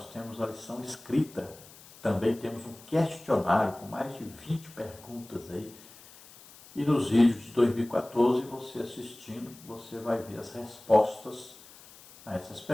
temos a lição escrita, também temos um questionário com mais de 20 perguntas aí. E nos vídeos de 2014, você assistindo, você vai ver as respostas a essas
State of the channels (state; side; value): noise; left; hiss, 21 dB below the sound